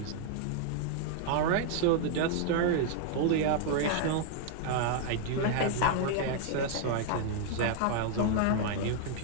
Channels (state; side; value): different; both; correlation 0.00